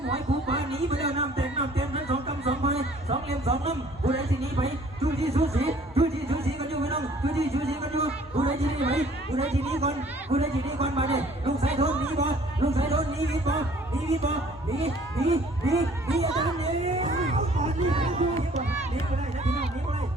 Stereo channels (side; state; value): both; normal; correlation 0.55